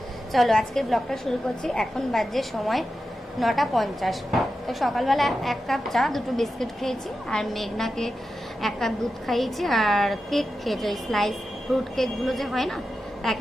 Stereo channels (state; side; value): normal; both; correlation 0.91